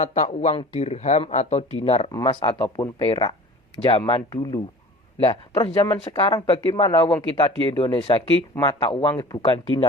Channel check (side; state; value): both; normal; correlation 0.42